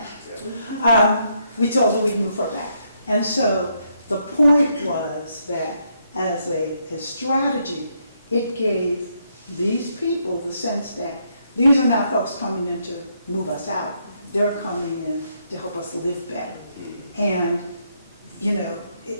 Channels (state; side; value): inverted; both; correlation -0.75